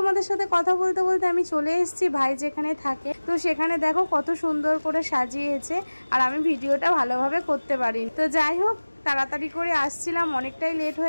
সাথে কথা বলতে বলতে আমি চলে এসেছি ভাই যেখানে থাকে। তো সেখানে দেখো কত সুন্দর করে সাজিয়েছে, আর আমি ভিডিওটা ভালোভাবে করতে পারিনি। তো যাই হোক, তাড়াতাড়ি করে আসছিলাম, অনেকটাই লেট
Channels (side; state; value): both; inverted; correlation -1.00